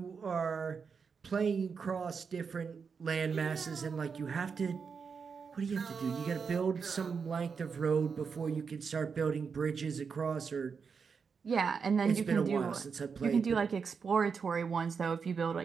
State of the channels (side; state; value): left; quieter; 5.8 dB